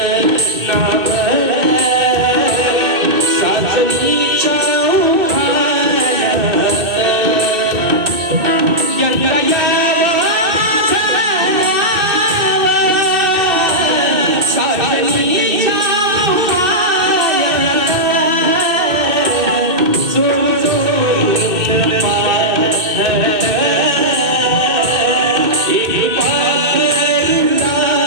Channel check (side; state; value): left; late; 2.6 ms